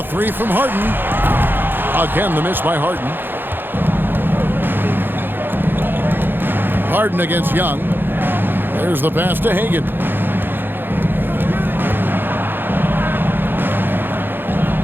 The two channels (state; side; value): late; left; 0.098 ms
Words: 3 from Harden. Again, the miss by Harden. Harden against Young. There's the pass to Hagan.